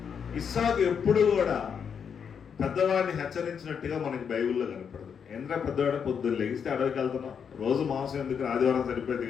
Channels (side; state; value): right; quieter; 7.1 dB